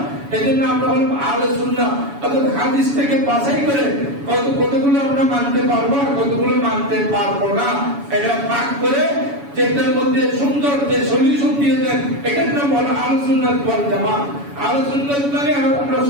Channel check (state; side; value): late; left; 7.1 ms